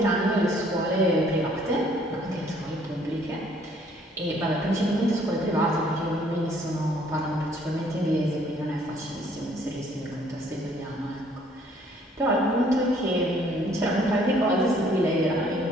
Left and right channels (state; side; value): normal; both; correlation 0.62